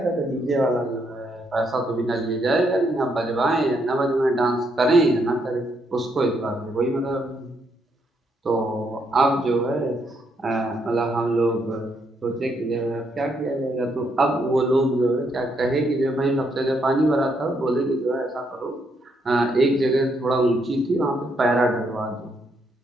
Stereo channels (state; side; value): normal; both; correlation 0.75